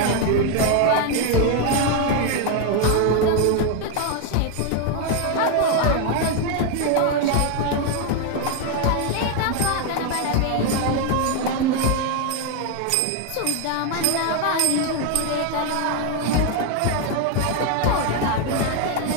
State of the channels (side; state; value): both; different; correlation 0.01